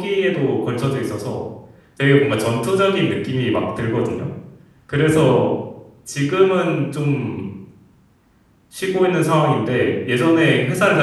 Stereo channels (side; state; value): both; identical; correlation 1.00